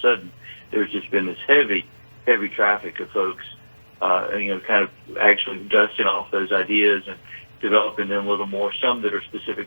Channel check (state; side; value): inverted; both; correlation -1.00